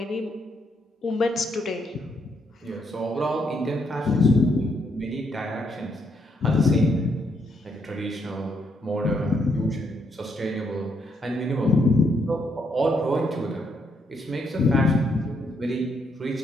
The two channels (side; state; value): both; normal; correlation 0.75